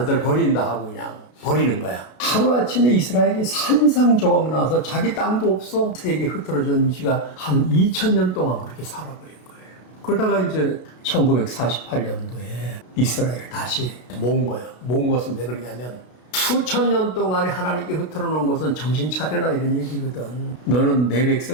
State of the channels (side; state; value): right; late; 32 ms